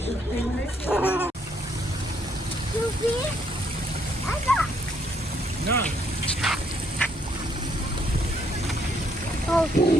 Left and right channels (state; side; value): normal; both; correlation 0.70